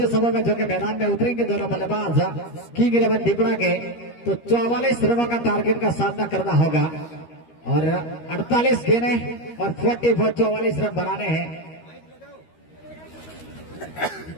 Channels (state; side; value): late; right; 13 ms